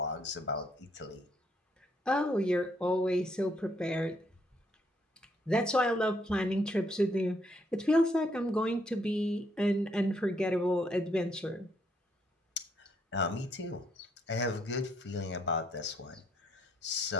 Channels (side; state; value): both; normal; correlation 0.72